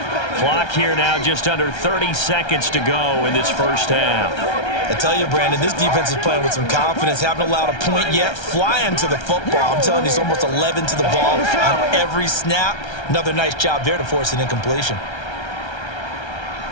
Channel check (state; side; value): late; right; 1.3 ms